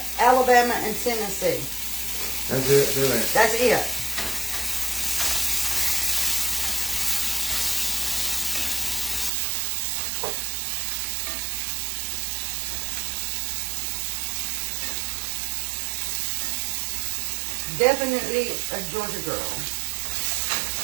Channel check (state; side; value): drops out; left; at 9.3 s